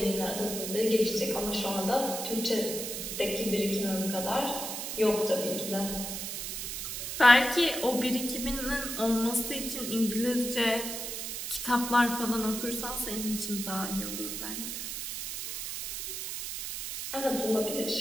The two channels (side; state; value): right; noise; hiss, 5 dB below the sound